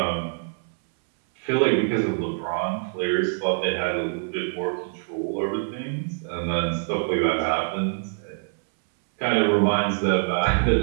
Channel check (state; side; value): silent; left; 62 dB below the other